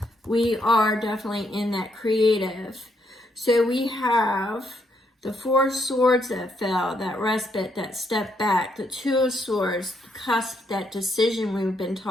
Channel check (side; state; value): both; normal; correlation 0.75